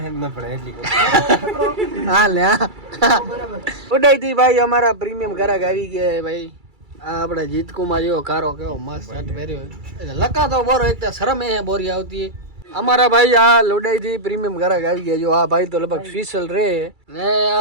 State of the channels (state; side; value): late; left; 2.3 ms